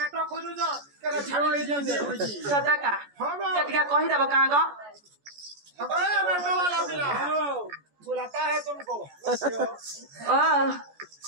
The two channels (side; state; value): left; late; 14 ms